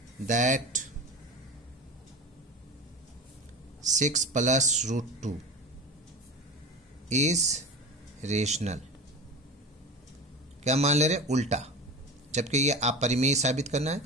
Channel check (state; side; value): normal; both; correlation 0.30